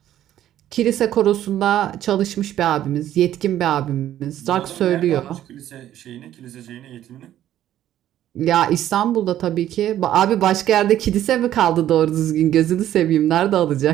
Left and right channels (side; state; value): left; quieter; 12.1 dB